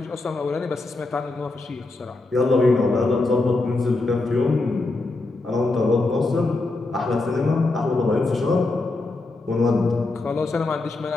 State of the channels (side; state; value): right; quieter; 3.2 dB